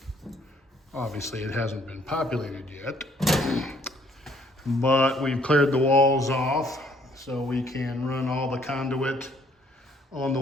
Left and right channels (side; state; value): both; normal; correlation 0.64